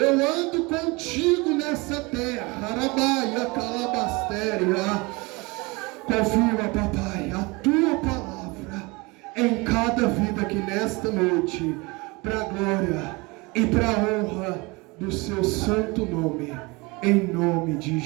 ando contigo nessa terra. Arabaia, calabastéria. Confirma, papai, a tua palavra em cada vida aqui nesta noite, para a glória e para a honra do seu santo nome, em nome de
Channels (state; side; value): quieter; left; 25.7 dB